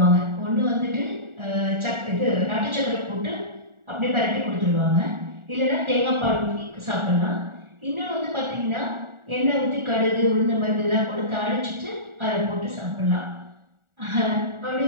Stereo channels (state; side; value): late; left; 1.4 ms